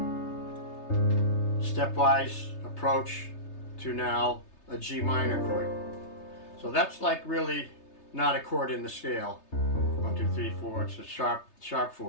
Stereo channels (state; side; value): late; right; 3.3 ms